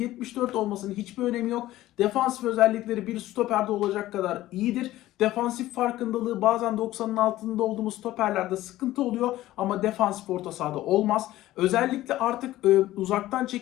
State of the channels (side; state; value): right; quieter; 15.4 dB